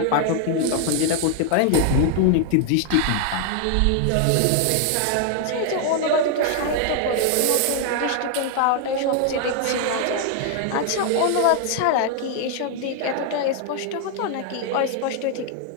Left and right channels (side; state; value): both; different; correlation 0.00